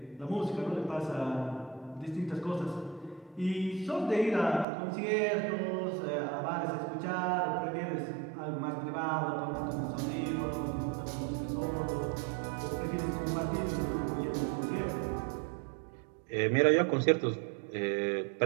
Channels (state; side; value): drops out; left; at 4.7 s